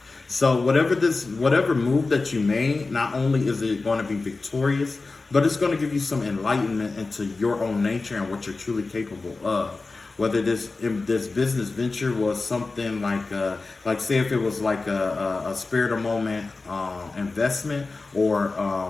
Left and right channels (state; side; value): quieter; right; 3.7 dB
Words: So whatever move that you made, not only is it going to be victorious, but it's going to give you some enlightenment into your own nature and what you're truly capable of. Whether this business venture was something like say if it was like a spare the moment investment, or